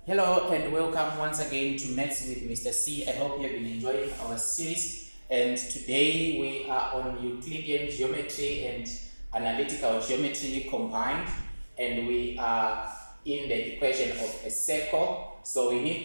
Hello and welcome once again to Maths with Mr. C. I hope you have been enjoying our series, and today we are on Euclidean geometry and analytical geometry combined, and we are in the equation of a circle. So we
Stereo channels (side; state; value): both; inverted; correlation -1.00